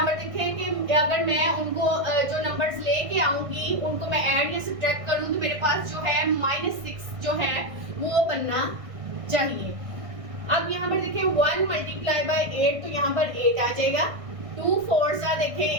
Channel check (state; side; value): late; left; 1.6 ms